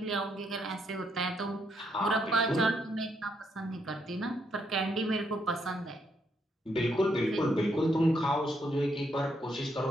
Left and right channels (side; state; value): both; normal; correlation 0.75